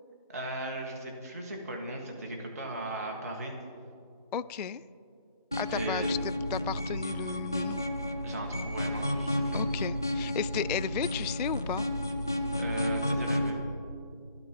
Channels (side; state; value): both; inverted; correlation -0.63